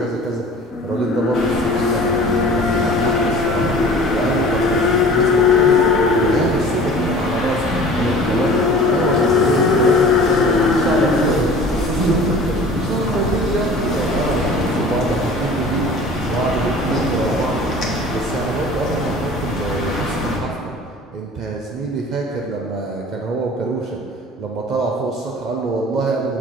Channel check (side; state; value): both; normal; correlation 0.43